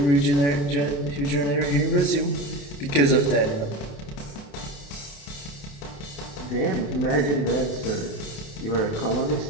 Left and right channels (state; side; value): late; right; 28 ms